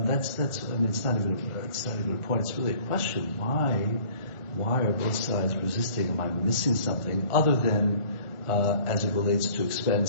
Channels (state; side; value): late; right; 1.4 ms